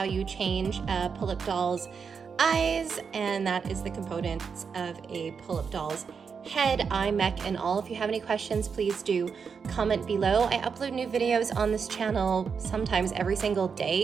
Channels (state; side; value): quieter; left; 6.0 dB